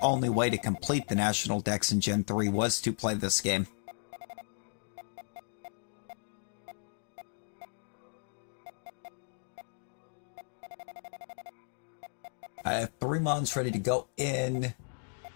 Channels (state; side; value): silent; right; digital silence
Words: way to complete the National Dex in Gen 3 was to play this game. I have 3 mons ready to go in.